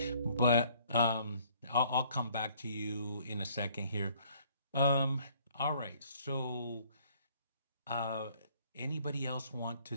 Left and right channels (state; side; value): inverted; both; correlation -0.59